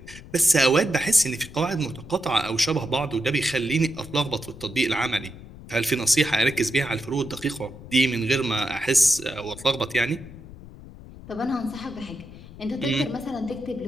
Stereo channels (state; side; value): noise; left; rumble, 16 dB below the sound